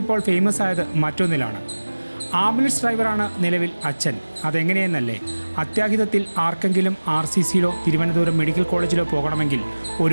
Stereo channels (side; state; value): both; inverted; correlation -1.00